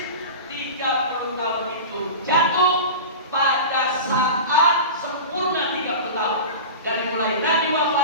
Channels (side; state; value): both; inverted; correlation -0.30